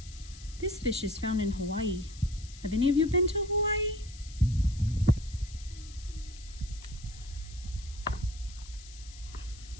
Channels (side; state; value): left; noise; hiss, 18 dB below the sound